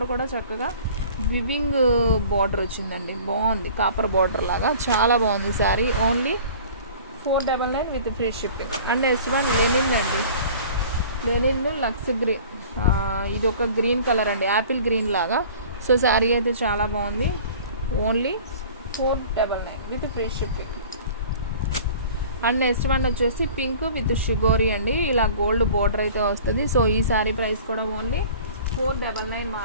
కూడా చక్కగా వివింగ్ బోర్డర్ వచ్చిందండి. బాగుంది, కాపర్ బోర్డర్ లాగా చాలా బాగుంది sari. Only 499 with free shipping. And next one linen అండి. లెనిన్ లక్స్ గ్రీన్, ఇది ఒక గ్రీన్ కలర్ అండి, యాపిల్ గ్రీన్ లాగా. సో శారీ అయితే చాలా బాగుంది. Only 499 with free shipping. And next one వచ్చేసి పింక్ విత్ షిగోరి అండి, ఇలా గోల్డ్ బోర్డర్ అయితే వస్తుంది. సో ఈ శారీ ప్రైస్ కూడా ఓన్లీ 499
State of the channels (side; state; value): both; inverted; correlation -0.45